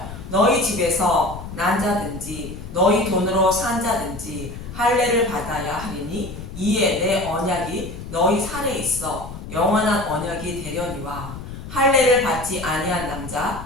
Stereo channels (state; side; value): noise; left; rumble, 11 dB below the sound